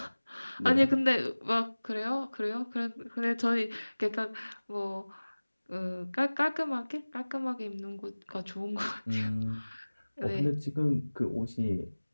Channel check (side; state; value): both; inverted; correlation -1.00